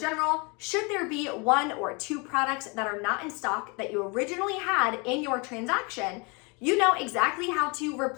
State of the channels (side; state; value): right; quieter; 30.3 dB